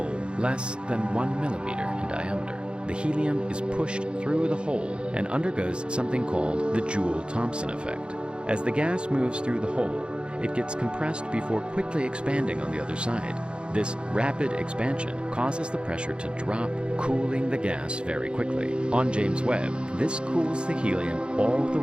less than 1 millimeter in diameter. The helium is pushed through the hole and undergoes something called the Joule-Thomson effect. As the gas moves through the hole, it gets compressed before quickly expanding on the other side. This rapid expansion causes the pressure to drop, cooling the gas very quickly. On James Webb, this cools the helium all the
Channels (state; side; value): late; left; 0.054 ms